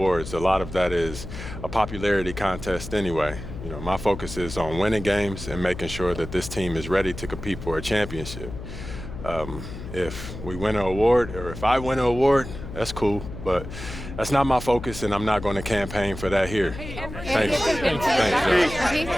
A lot of that is a popularity contest anyway. You know, my focus is on winning games and making sure that this team is ready to compete for a championship. If we win an award, or if I win an award, that's cool, but that's not my focus, and I'm not going to campaign for that here. Thanks. Thanks,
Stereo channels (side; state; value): left; noise; hum, 10 dB below the sound